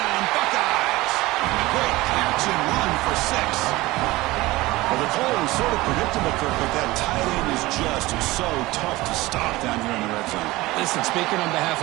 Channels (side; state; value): left; quieter; 19.6 dB